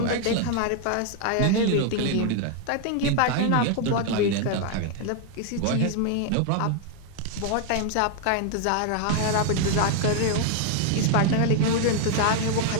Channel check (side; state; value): both; different; correlation 0.00